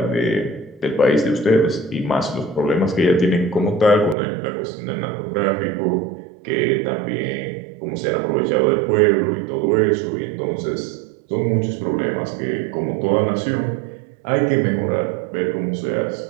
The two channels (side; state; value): left; drops out; at 4.2 s